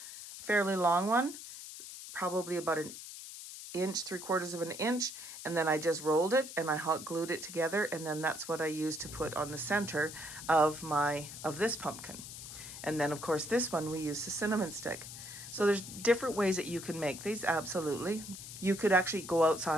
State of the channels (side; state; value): left; noise; hiss, 11 dB below the sound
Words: fairly long one, probably about an inch, 3/4 of an inch, and then I just rolled it and I hot glued it together, and then that's what I used to put on the center of this pumpkin. And then of course this one we use the cinnamon stick. So there's different ways that you can make these, absolutely. You could actually go